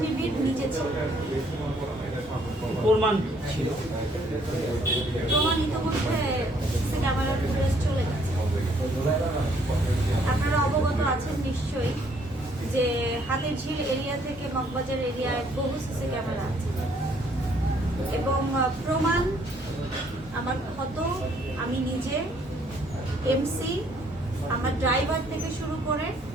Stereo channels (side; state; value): both; normal; correlation 0.65